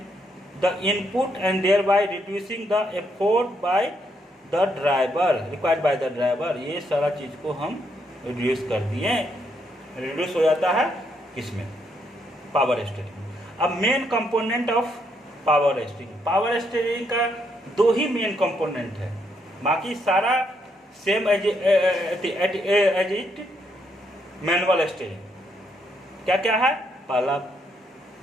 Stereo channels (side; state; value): both; normal; correlation 0.75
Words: the input and thereby reducing the effort by the driver required by the driver. ये सारा चीज़ को हम रिड्यूस कर दिए, रिड्यूस हो जाता है किसमें, पावर स्टीयरिंग। अब main component of power steering, power steering का दो ही मेन कंपोनेंट है, बाकी सारा same as it manual steering. क्या क्या है, पहला